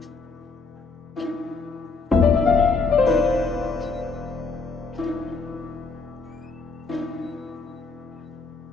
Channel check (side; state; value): right; quieter; 4.2 dB